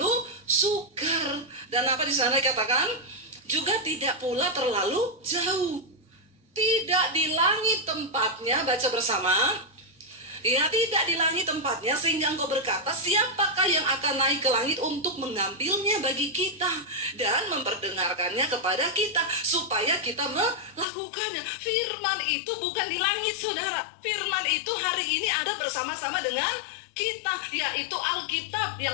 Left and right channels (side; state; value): right; drops out; at 20.9 s